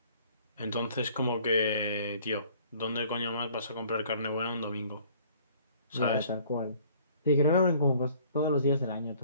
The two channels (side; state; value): both; inverted; correlation -0.55